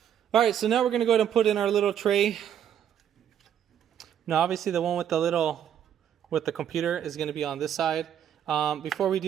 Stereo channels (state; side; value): quieter; left; 9.6 dB